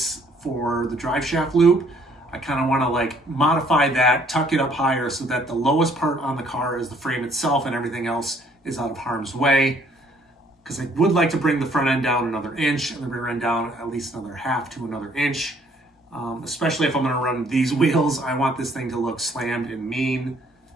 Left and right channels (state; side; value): normal; both; correlation 0.63